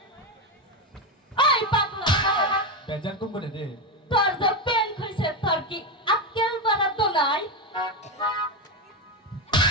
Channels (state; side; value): normal; both; correlation 0.11